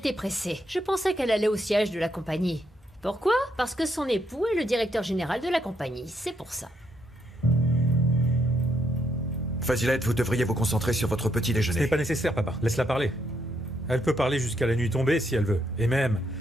pressée. Je pensais qu'elle allait au siège de la compagnie. Pourquoi? Parce que son époux est le directeur général de la compagnie. C'est pour ça. Fazilet, vous devriez vous concentrer sur votre petit Ce déjeuner. n'est pas nécessaire, papa. Laisse-la parler. Elle peut parler jusqu'à la nuit tombée si elle veut. Et même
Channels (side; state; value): both; normal; correlation 0.76